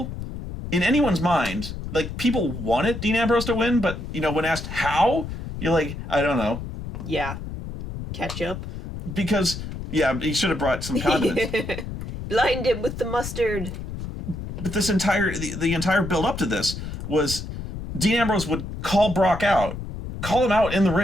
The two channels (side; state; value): left; noise; rumble, 8 dB below the sound